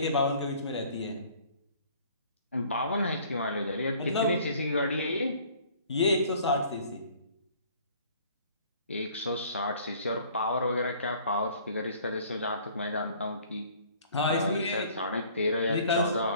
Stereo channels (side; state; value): both; inverted; correlation -0.54